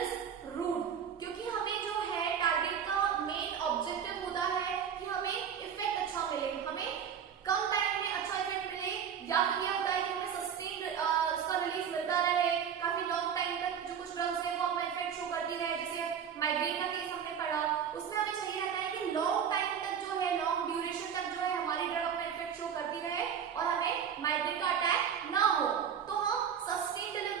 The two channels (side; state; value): left; quieter; 8.0 dB